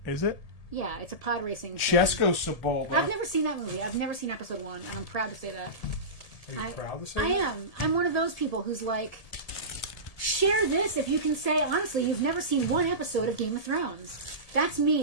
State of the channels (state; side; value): late; right; 1.7 ms